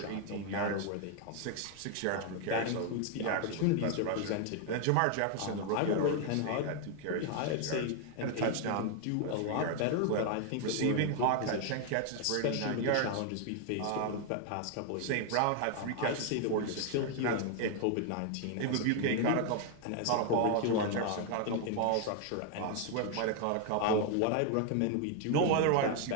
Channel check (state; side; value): different; both; correlation 0.00